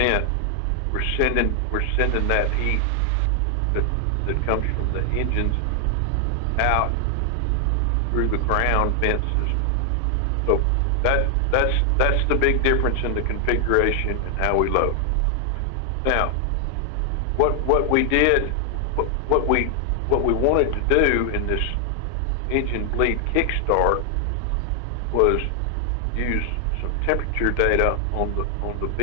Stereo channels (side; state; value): both; different; correlation 0.00